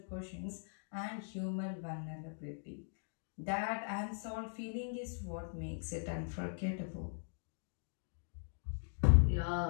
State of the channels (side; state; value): right; silent; digital silence